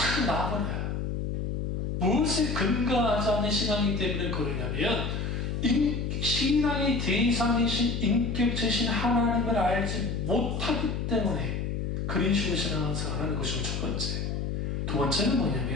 나와버려요. 무엇에 근거하지 않는 신앙이기 때문에 그러냐면 신앙의 대상이신 인격체신 하나님을 알지 못하기 때문에 그런 식으로 신앙생활하는 것이고 첫 번째. 두 번째는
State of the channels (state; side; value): noise; left; hum, 2 dB below the sound